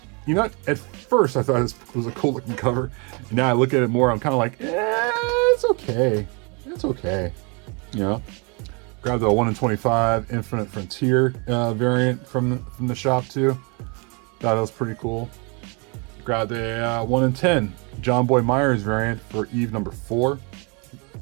You know, at first I thought this was a cool looking cover. And now I look at it more, I'm kind of like, it's okay. It's okay. You know? Grabbed the 1 in 25 Infinite Frontier variant from the shop too. Thought that was pretty cool. Grabbed a 1 in 10 John Boy Myers variant for Eve number 4.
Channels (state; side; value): quieter; left; 32.4 dB